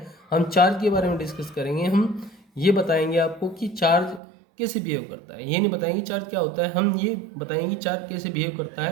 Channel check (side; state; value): left; drops out; at 4.2 s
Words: हम चार्ज के बारे में डिस्कस करेंगे। हम ये बताएंगे आपको कि चार्ज कैसे बिहेव करता है। ये नहीं बताएंगे चार्ज क्या होता है, हम ये बताएंगे चार्ज कैसे बिहेव करता